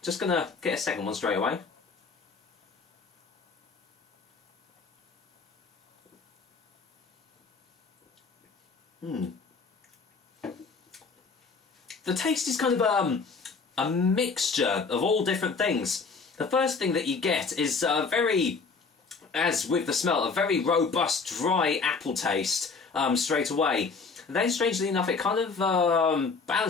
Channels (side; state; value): right; quieter; 4.7 dB